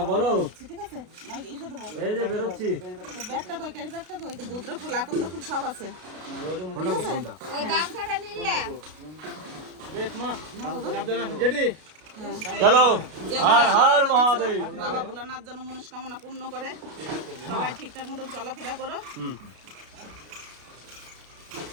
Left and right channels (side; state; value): left; late; 33 ms